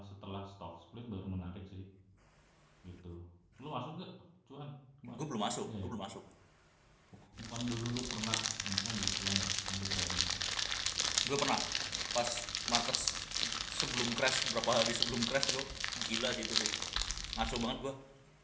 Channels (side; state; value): both; identical; correlation 1.00